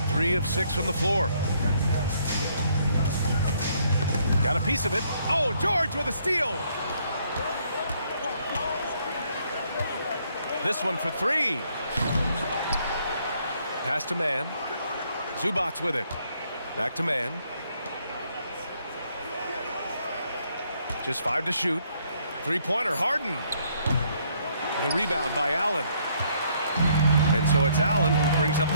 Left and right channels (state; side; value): inverted; both; correlation -0.68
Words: 3 of 6 from the floor. Got a piece of it. Oh, George with a steal. This one for three. Pass to man. Zubac with it. Back to man. Just 5 to shoot. Three-pointer, Harden. The rebound by Allen. And so it's Allen who brings up